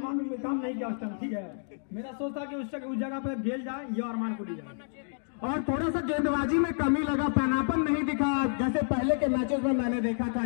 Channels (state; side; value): silent; right; digital silence